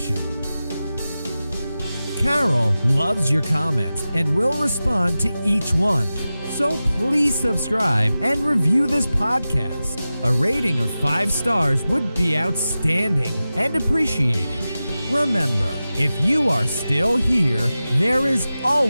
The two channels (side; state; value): both; inverted; correlation -0.95